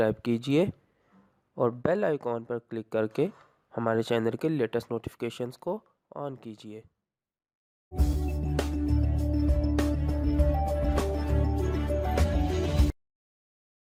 कीजिए और बेल आइकॉन पर क्लिक करके हमारे चैनल के लेटेस्ट नोटिफिकेशंस को ऑन कीजिए।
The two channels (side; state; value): both; identical; correlation 1.00